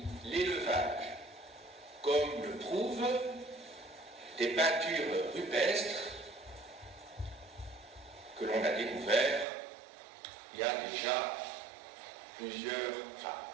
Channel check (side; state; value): left; drops out; at 9.5 s